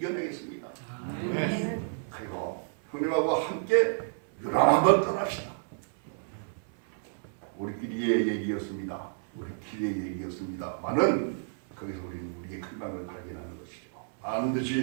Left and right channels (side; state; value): left; silent; 57 dB below the other